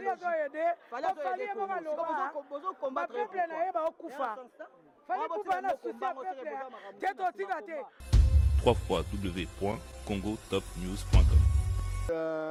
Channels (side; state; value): both; identical; correlation 1.00